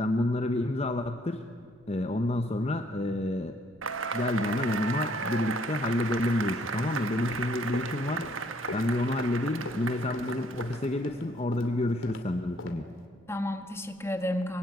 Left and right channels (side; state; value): right; noise; rumble, 29 dB below the sound